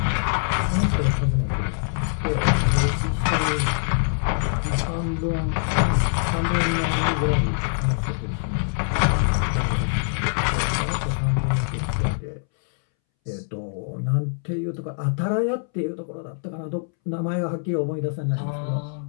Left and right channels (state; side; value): silent; right; 63 dB below the other